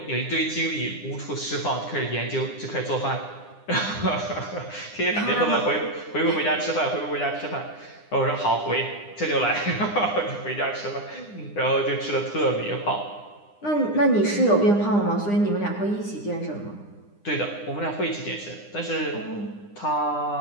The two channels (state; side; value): late; right; 9.9 ms